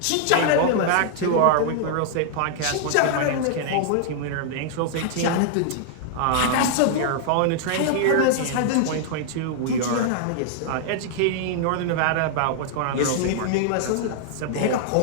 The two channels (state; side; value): different; both; correlation -0.01